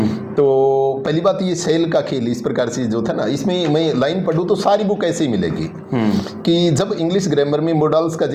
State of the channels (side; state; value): both; identical; correlation 1.00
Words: तो पहली बात ये शेल का खेल इस प्रकार से जो था ना, इसमें मैं लाइन पढ़ूँ तो सारी बुक ऐसे ही मिलेगी कि जब इंग्लिश ग्रामर में मॉडल्स का